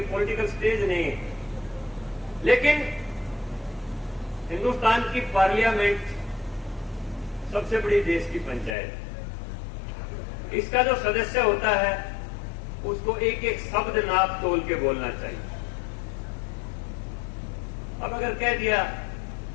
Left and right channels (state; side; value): drops out; right; at 8.8 s